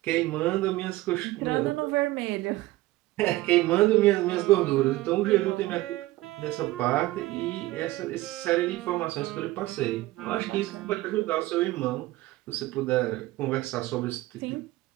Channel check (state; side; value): quieter; left; 18.0 dB